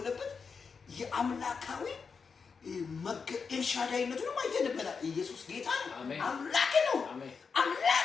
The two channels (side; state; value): right; quieter; 5.4 dB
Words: የአምላካዊ ኤልሻዳይነቱን አይተንበታል። ኢየሱስ ጌታ ነው። አምላክ ነው።